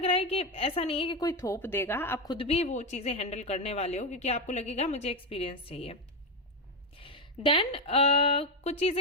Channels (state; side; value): normal; both; correlation 0.09